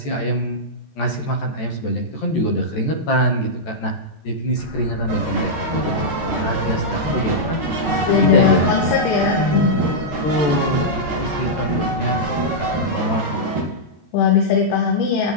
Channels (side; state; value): right; late; 13 ms